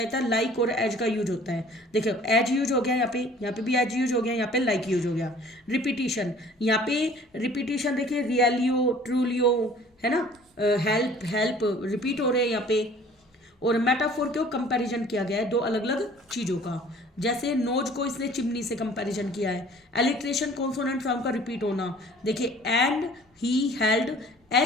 था लाइक और एज का यूज होता है। देखो एज यूज हो गया, यहाँ पे भी एज यूज हो गया, यहाँ पे लाइक यूज हो गया। रिपीटिशन, यहाँ पे रिपीटिशन देखिए, रियलियो ट्रूलियो है ना, हेल्प रिपीट हो रहे हैं यहाँ पे। और मेटाफोर क्यों कंपैरिजन किया गया है 2 अलग अलग चीज़ों का, जैसे नोज को इसने चिमनी से कंपैरिजन किया है। एलिट्रेशन कॉन्सोनेंट साउंड का रिपीट होना, देखिए and he held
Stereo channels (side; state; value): both; normal; correlation 0.51